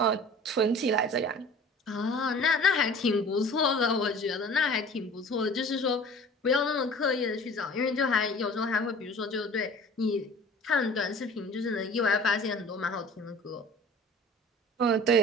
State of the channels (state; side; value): normal; both; correlation 0.44